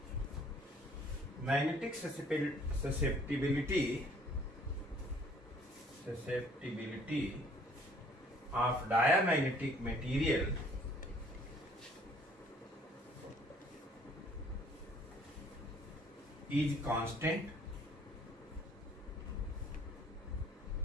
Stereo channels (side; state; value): both; normal; correlation 0.58